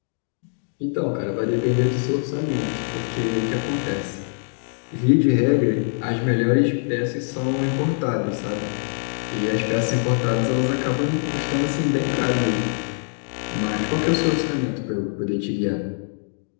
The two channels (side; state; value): right; silent; digital silence